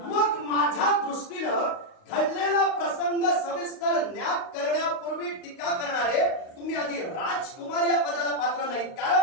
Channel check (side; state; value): right; late; 38 ms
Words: मग माझ्या दृष्टीनं घडलेला प्रसंग सविस्तर ज्ञात करण्यापूर्वी टीका करणारे तुम्ही आधी राजकुमार या पदाला पात्र नाहीत.